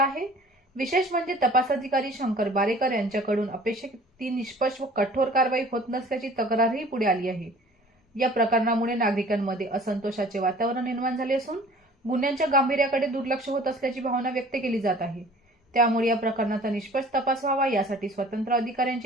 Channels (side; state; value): both; normal; correlation 0.49